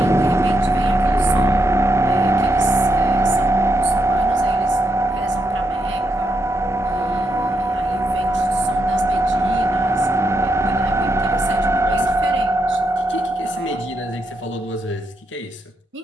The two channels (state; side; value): normal; both; correlation 0.81